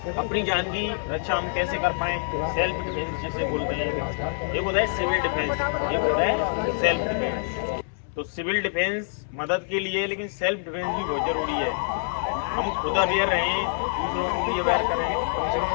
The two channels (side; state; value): right; silent; 61 dB below the other